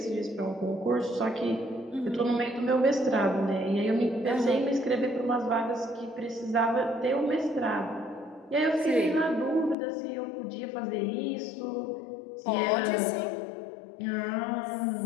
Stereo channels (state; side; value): drops out; right; at 9.8 s